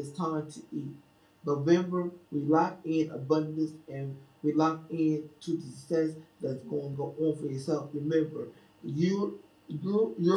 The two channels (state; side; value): identical; both; correlation 1.00